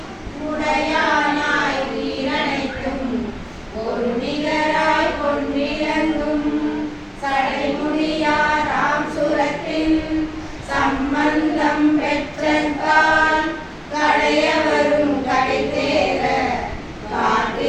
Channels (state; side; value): identical; both; correlation 1.00